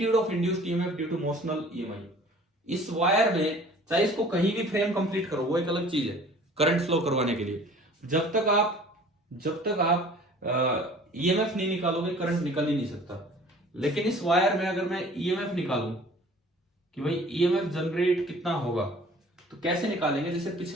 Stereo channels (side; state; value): both; normal; correlation 0.49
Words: of induced EMF due to motional EMI. इस वायर में चाहे इसको कहीं भी फ्रेम कंप्लीट करो, वो एक अलग चीज है करंट फ्लो करवाने के लिए। जब तक आप ईएमएफ नहीं निकालोगे करंट निकल ही नहीं सकता। लेकिन इस वायर में अगर मैं ईएमएफ निकालूं कि भाई ईएमएफ जनरेट कितना होगा, तो कैसे निकालेंगे? जैसे